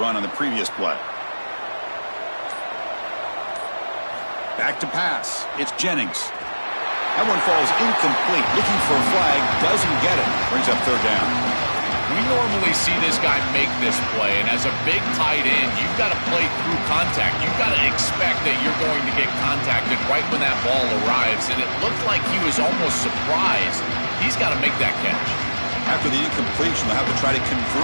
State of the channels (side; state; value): both; inverted; correlation -1.00